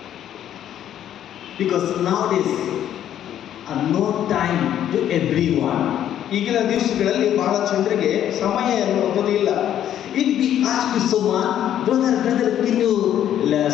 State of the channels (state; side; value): quieter; right; 10.8 dB